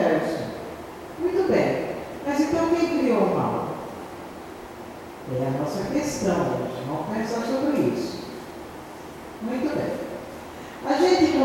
Muito bem, mas então quem criou o mal? É a nossa questão hoje, vamos pensar sobre isso. Muito bem. A gente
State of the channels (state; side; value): identical; both; correlation 1.00